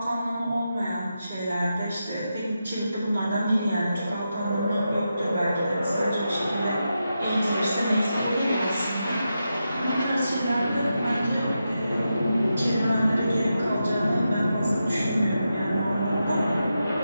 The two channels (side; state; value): both; inverted; correlation -0.88